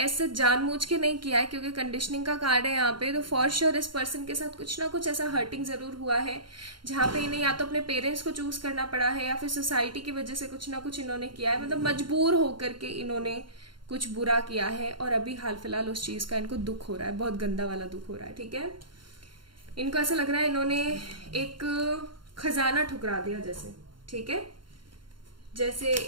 जानबूझ के नहीं किया है, क्योंकि कंडीशनिंग का कार्ड है यहाँ पे। तो फॉर श्योर इस पर्सन के साथ कुछ ना कुछ ऐसा हर्टिंग जरूर हुआ है, जहाँ पे इन्हें या तो अपने पेरेंट्स को चूज करना पड़ा है, या फिर सोसाइटी की वजह से कुछ ना कुछ इन्होंने किया है, मतलब मजबूर होकर के इन्होंने कुछ बुरा किया है। और अभी हाल फिलहाल उस चीज का इनको दुख हो रहा है, बहुत गंदा वाला दुख हो रहा है। ठीक है, इनको ऐसा लग रहा है इन्होंने एक खजाना ठुकरा दिया जैसे। ठीक है, जैसे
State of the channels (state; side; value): late; left; 0.72 ms